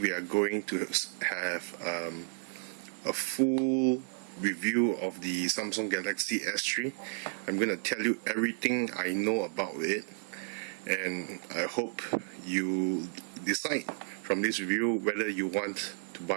are going to have a full review of the Samsung Galaxy S3. I'm going to tell you everything I know about it, and I hope you decide from this review whether you want to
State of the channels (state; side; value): silent; left; 56 dB below the other